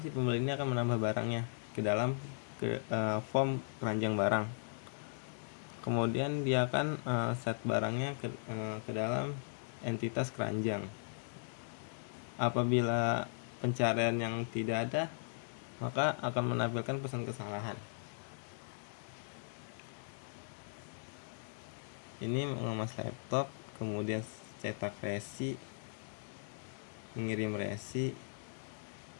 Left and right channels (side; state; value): right; silent; digital silence